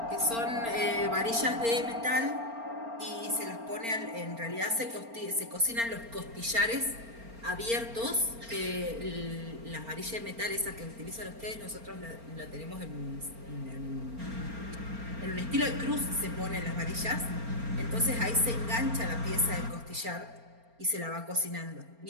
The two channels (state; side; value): late; left; 4.4 ms